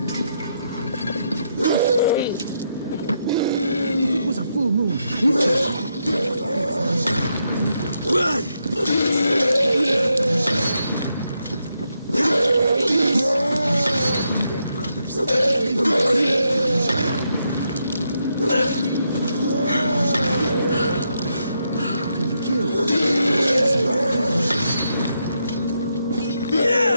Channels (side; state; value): both; inverted; correlation -0.81